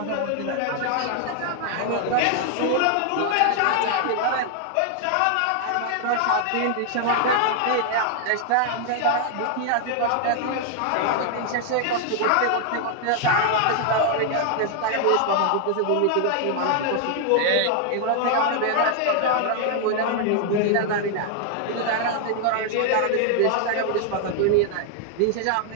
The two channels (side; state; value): both; different; correlation 0.00